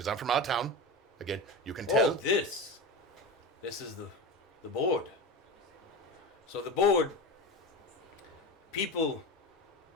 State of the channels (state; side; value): normal; both; correlation 0.25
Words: I'm from out of town. Again, you can tell. Oh, this is the board. So the board, people